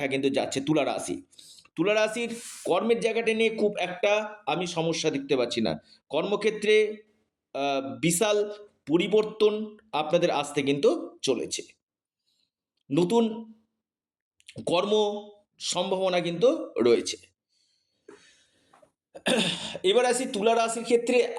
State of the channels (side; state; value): both; identical; correlation 1.00